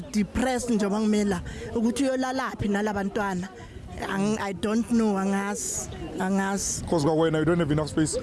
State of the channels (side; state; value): both; identical; correlation 1.00